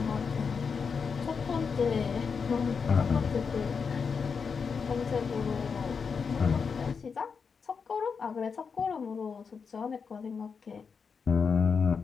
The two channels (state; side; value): quieter; right; 5.7 dB